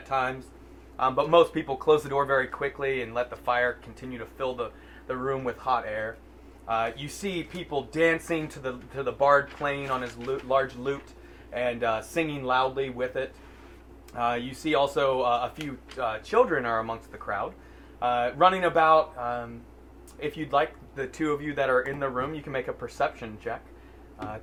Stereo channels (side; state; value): both; identical; correlation 1.00